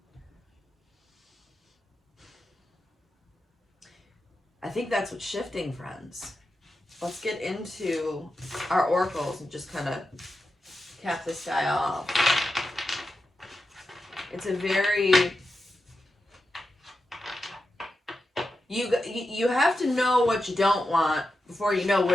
I think that's what's shifting, friends. Let's get into our oracles and just kind of cap this guy off. It's a very... You have to know what you don't want before you know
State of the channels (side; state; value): both; normal; correlation 0.90